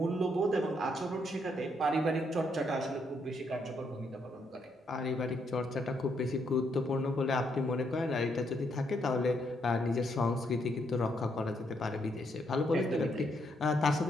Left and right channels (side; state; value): both; normal; correlation 0.75